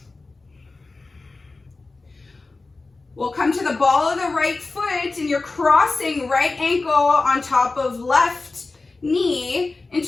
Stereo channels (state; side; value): quieter; right; 3.6 dB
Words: We'll come to the ball of the right foot and you're crossing right ankle on top of left knee